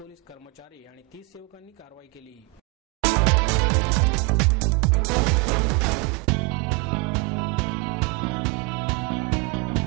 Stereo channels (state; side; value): quieter; left; 27.3 dB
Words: कर्मचारी आणि 30 सेवकांनी कारवाई केली.